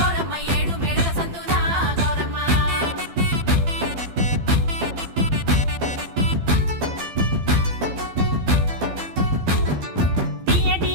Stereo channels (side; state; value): left; late; 12 ms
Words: ఏడు మేడల సందునా గౌరమ్మ తీయటి